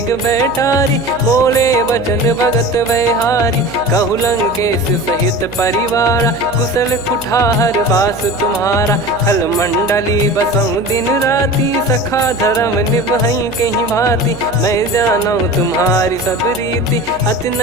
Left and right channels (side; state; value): right; noise; hum, 16 dB below the sound